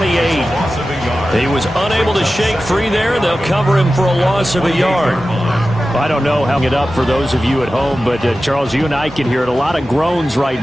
He was unable to shake free there. They'll cover him for a loss of a yard. I don't know how it up for those of you at home, but Charles, you and I can hear it. A lot of groans right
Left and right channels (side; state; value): both; normal; correlation 0.94